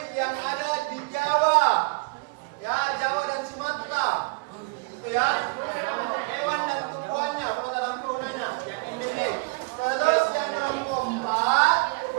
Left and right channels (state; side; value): quieter; left; 29.4 dB